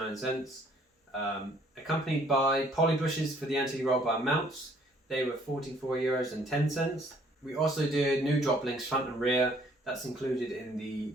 Accompanied by poly bushes for the anti-roll bar mounts. They were €44.10. We also did new drop links front and rear. That's included in the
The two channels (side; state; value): both; normal; correlation 0.61